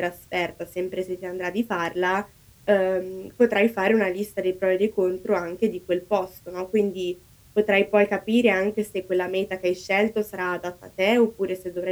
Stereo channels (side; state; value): both; identical; correlation 1.00